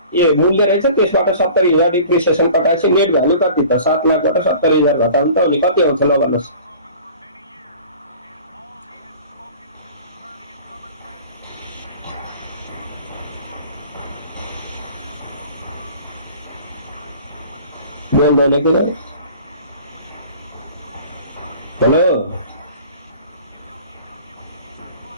ए मूल्य रहेछ त्यसबाट 70,000 डिप्रिसिएसन कटाएपछि नेट भ्यालु कति त 7 लाखबाट 70,000 घटाउनु त अनि कति आउँछ ल भन्नुस् बोल्दैन के गरे हेलो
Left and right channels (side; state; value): both; inverted; correlation -0.45